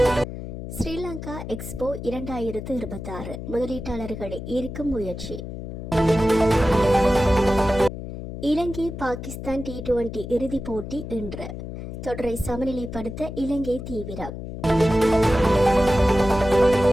ஸ்ரீலங்கா எக்ஸ்போ 2026 முதலீட்டாளர்களை ஈர்க்கும் முயற்சி. இலங்கை பாகிஸ்தான் T20 இறுதிப் போட்டி இன்று. தொடரை சமநிலைப்படுத்த இலங்கை தீவிரம்.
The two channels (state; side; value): noise; left; hum, 9 dB below the sound